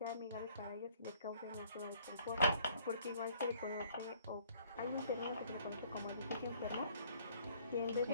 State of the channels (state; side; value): inverted; both; correlation -0.60